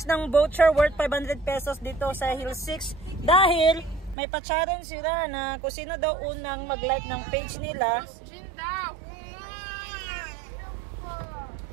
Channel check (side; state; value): left; drops out; at 4.2 s